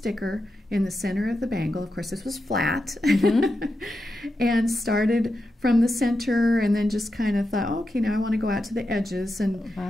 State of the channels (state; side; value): normal; both; correlation 0.88